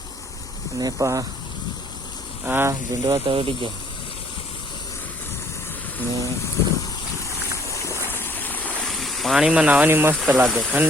ने आ झुंडवा तोड़ी गया ने पानी में नहावानी मस्त लागे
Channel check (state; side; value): normal; both; correlation 0.60